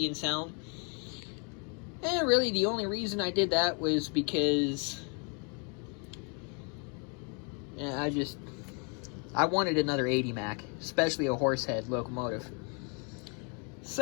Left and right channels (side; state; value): right; quieter; 36.5 dB